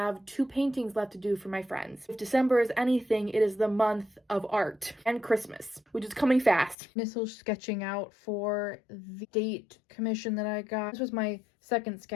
2 paintings left to do for my friends. If December is anything, it is the month of art and Christmas, which is coming fast. Initial sketching out for the date commission that I got. This was my 2nd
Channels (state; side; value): drops out; right; at 6.8 s